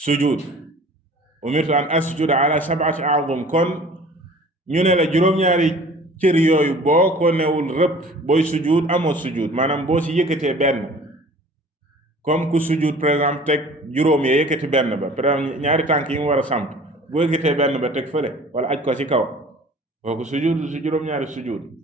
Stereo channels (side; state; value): both; normal; correlation 0.47